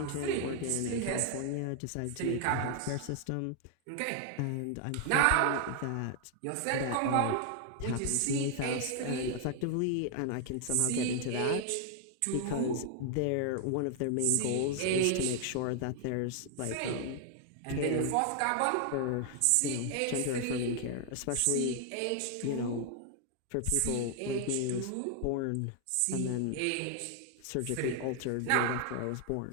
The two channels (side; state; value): both; different; correlation 0.00